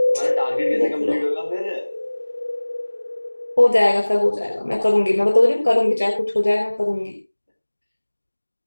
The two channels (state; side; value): inverted; both; correlation -1.00